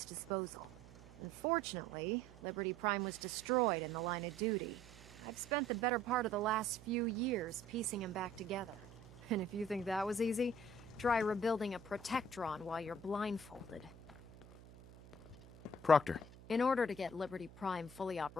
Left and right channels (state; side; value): noise; right; hum, 20 dB below the sound